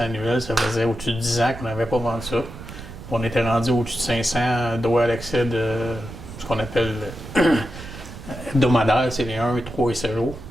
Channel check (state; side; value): noise; right; rumble, 13 dB below the sound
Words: annuels. Ça faisait au-dessus de 10 ans qu'on n'avait pas vendu ça. On était rendu au-dessus de 500 droits d'accès de ce qu'on appelle hebdomadaire, c'est les 1, 3 et 7 jours.